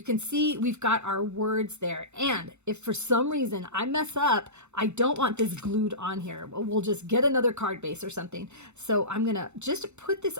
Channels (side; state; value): left; late; 0.82 ms